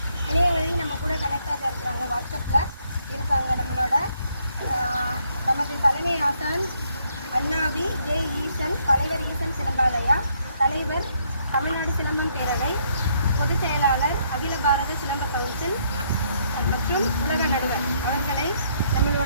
இணைய வழி நம்ம கூட கனெக்டாக இருக்கிறாங்க. வாட்ஸ்அப்பில் இருக்காங்க. நமது தலைமை ஆசான் அண்ணாவி ஜே ஈசன், தலைவர் ஈசன் சிலம்பாலயா, தலைவர் தமிழ்நாடு சிலம்பம் பேரவை, பொதுச் செயலாளர் அகில பாரத சிலம்ப கவுன்சில் மற்றும் உலக நடுவர் அவர்களை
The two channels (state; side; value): inverted; both; correlation -0.71